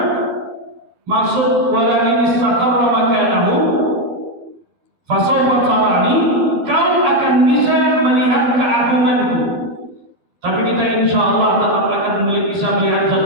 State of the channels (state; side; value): late; left; 12 ms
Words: Maksud walakin istaqarra makanahu fasawfa tarani, kau akan bisa melihat keagunganku. Tapi kita insyaallah tetap akan bisa melihat zat